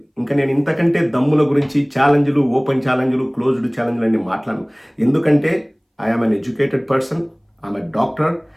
ఇంకా నేను ఇంతకంటే దమ్ముల గురించి ఛాలెంజ్లు, ఓపెన్ ఛాలెంజ్లు, క్లోజ్డ్ ఛాలెంజ్లు అన్ని మాట్లాడను. ఎందుకంటే I'm an educated person, I'm a doctor.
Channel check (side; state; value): both; identical; correlation 1.00